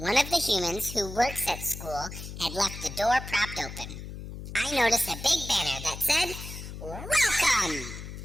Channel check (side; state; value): left; noise; hum, 10 dB below the sound